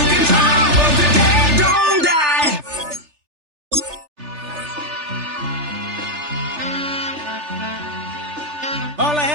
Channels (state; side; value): late; left; 3.4 ms